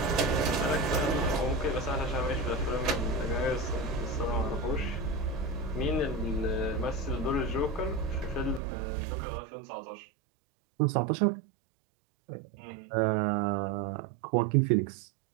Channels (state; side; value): drops out; left; at 8.6 s